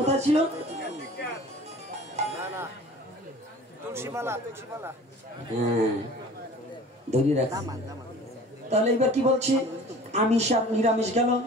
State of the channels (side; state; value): both; normal; correlation 0.44